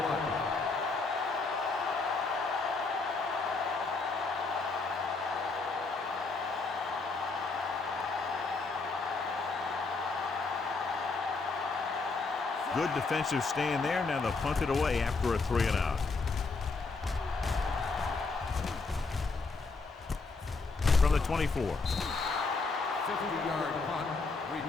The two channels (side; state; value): right; quieter; 4.1 dB